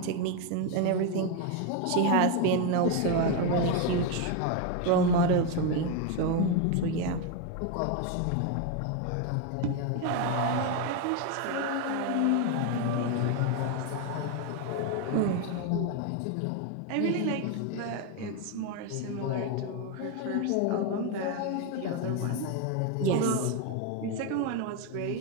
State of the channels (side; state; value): both; different; correlation 0.02